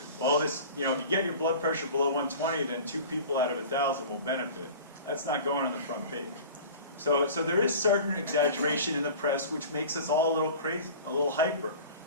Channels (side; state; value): both; inverted; correlation -0.39